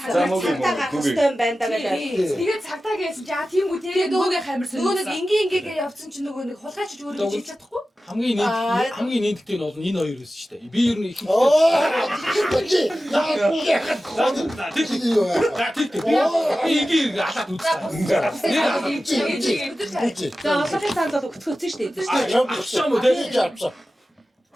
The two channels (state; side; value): normal; both; correlation 0.95